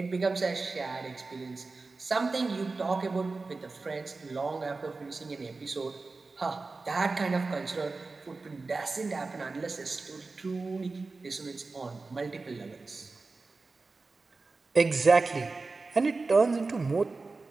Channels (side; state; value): left; quieter; 3.8 dB